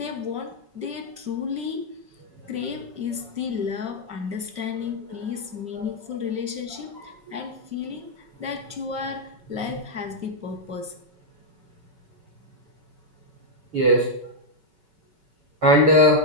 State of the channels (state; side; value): late; left; 5.3 ms